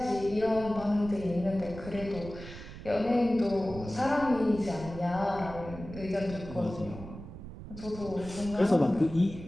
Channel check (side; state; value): right; noise; rumble, 12 dB below the sound